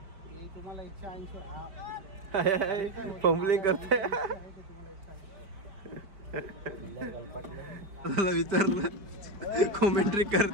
तुम्हाला 180 फंबलिंग करते. विचारलं कॉमेंट्री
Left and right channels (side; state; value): left; late; 5.0 ms